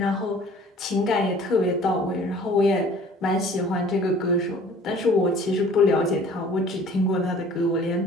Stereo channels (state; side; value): normal; both; correlation 0.50